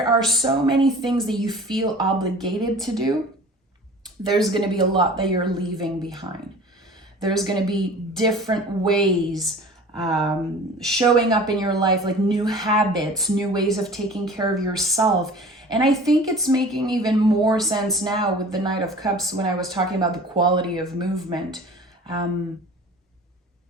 are so many things that you feel obligated to do, there's going to be a lot that you're leaving behind. There's going to be different ways showing up in your life, like new habits, new ways of taking care of yourself. And I think it's making even more sense now with the Knight of Cups when I was talking about the quality of movement.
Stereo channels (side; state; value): both; normal; correlation 0.43